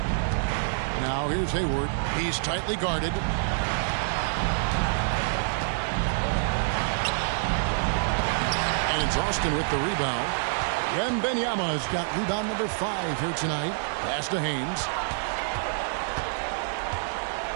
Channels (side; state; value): left; silent; 60 dB below the other